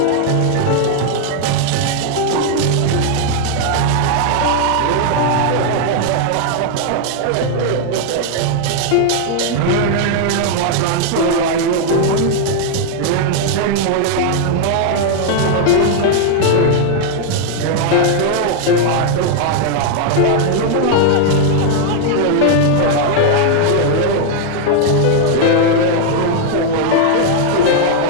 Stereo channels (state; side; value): different; both; correlation 0.00